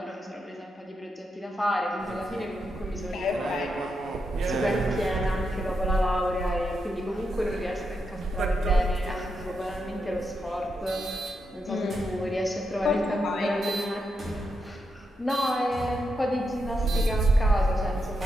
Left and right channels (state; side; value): normal; both; correlation 0.84